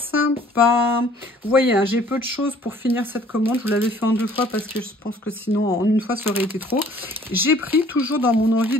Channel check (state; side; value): normal; both; correlation 0.56